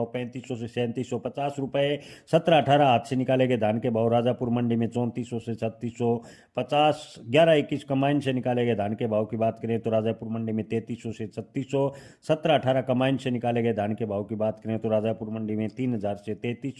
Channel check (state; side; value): identical; both; correlation 1.00